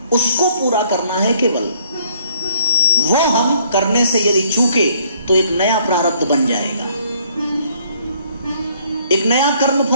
उसको पूरा करना है केवल। वो हम करने से यदि चूके तो एक नया प्रारब्ध बन जाएगा, एक नया कर्म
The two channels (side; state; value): both; inverted; correlation -0.64